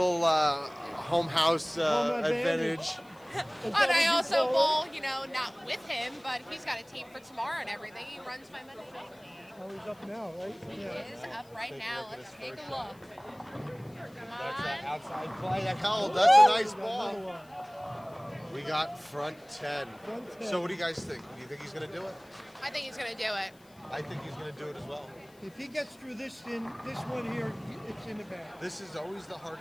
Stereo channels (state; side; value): noise; left; hiss, 29 dB below the sound